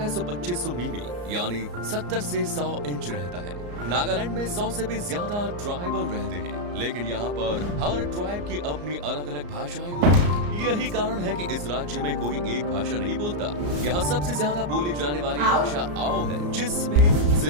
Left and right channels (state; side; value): late; left; 34 ms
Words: मिमी यानी 70 से 100 इंच रहता है। नागालैंड में 100 से भी ज्यादा ट्राइबल रहते हैं, लेकिन यहाँ पर हर ट्राइब की अपनी अलग अलग भाषाएं होती हैं। यही कारण है कि इस राज्य में कोई एक भाषा नहीं बोलता। यहाँ सबसे ज्यादा बोली जाने वाली भाषा आओ है, जिसमें